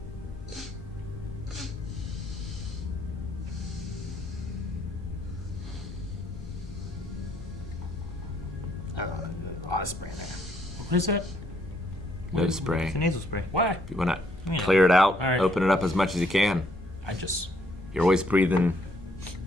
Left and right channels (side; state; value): both; normal; correlation 0.70